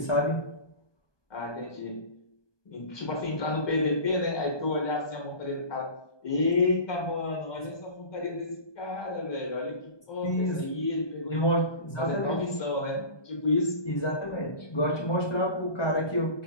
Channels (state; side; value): late; right; 1.2 ms